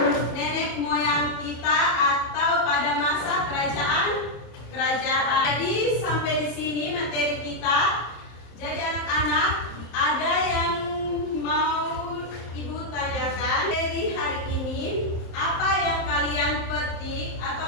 kerajaan. Jadi sampai di sini materi kita. Jadi anak-anak, ada yang mau Ibu tanyakan dari hari ini, apa yang kalian petik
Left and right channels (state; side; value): late; right; 27 ms